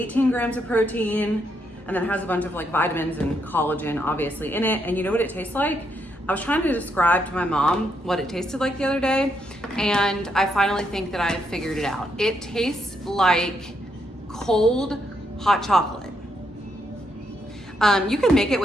grams of protein, and then it has a bunch of like vitamins and collagen obviously in it. And you know what it tastes like? I was trying to describe to my mom what it tasted like the other day, and I finally think that I figured it out. It tastes like cold hot chocolate. You can make it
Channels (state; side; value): normal; both; correlation 0.77